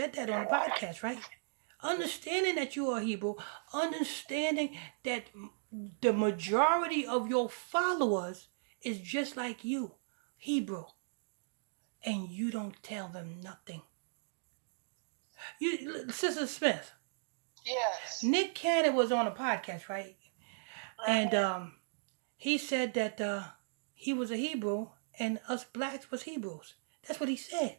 that on the podcast, right? Understanding that you are Hebrew. Understanding that the majority of your followers is just like you, Hebrew. And you don't tell them nothing. Sister Smith. Yes. Nick Cannon was on a podcast, right? And he said that he was a Hebrew and us blacks was Hebrews. That's what he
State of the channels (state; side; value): silent; left; digital silence